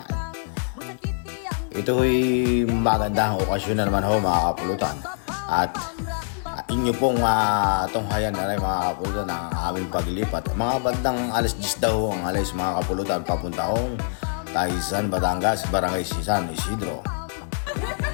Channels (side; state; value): right; silent; digital silence